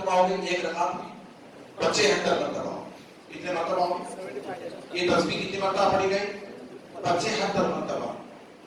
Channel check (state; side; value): identical; both; correlation 1.00